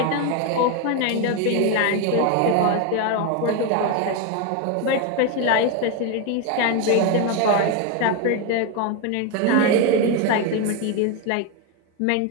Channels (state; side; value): different; both; correlation 0.02